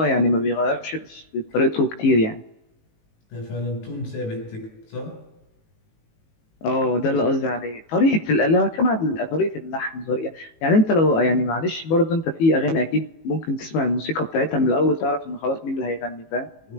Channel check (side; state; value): right; late; 18 ms